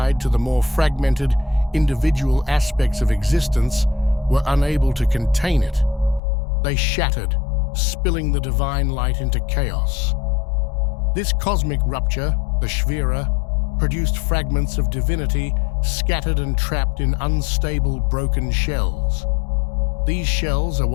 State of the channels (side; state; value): right; drops out; at 6.2 s